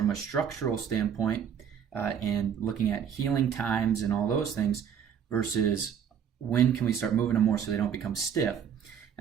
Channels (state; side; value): quieter; left; 8.1 dB